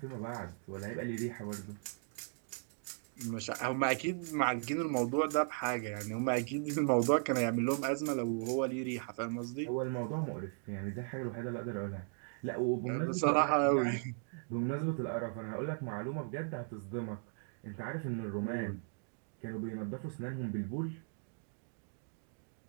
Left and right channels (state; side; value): silent; left; 53 dB below the other